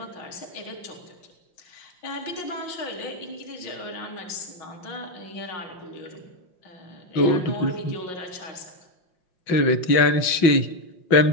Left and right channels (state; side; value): late; right; 5.6 ms